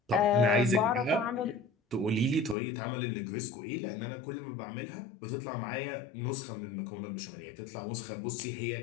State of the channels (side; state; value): right; drops out; at 2.6 s